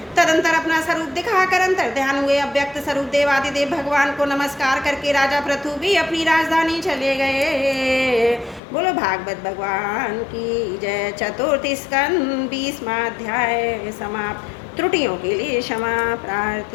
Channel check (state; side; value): drops out; right; at 8.6 s